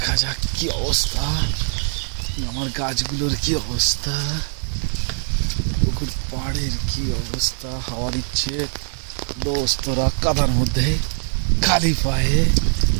যাক কি অবস্থা, আমার গাছগুলোর কি অবস্থা, পুকুর পাড়ের কি অবস্থা। হাওয়া দিচ্ছে, দোস্তরা কাদার মধ্যে খালি পায়ে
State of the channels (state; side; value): silent; left; digital silence